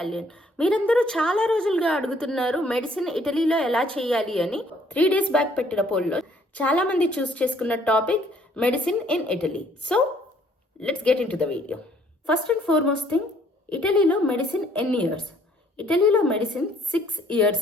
మీరందరూ చాలా రోజులుగా అడుగుతున్నారు మెడిసిన్ ఇటలీలో ఎలా చేయాలి అని. 3 days బ్యాక్ పెట్టిన పోల్లో చాలా మంది చూస్ చేసుకున్న topic medicine in Italy. So let's get in to the video. First and foremost thing, ఇటలీలో మెడిసిన్ ఎన్ని ఇయర్స్? ఇటలీలో మెడిసిన్ 6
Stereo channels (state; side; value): normal; both; correlation 0.62